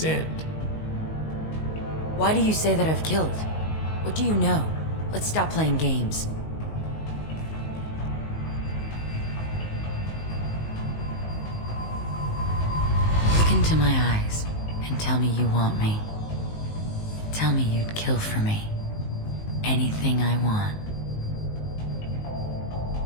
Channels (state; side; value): late; right; 19 ms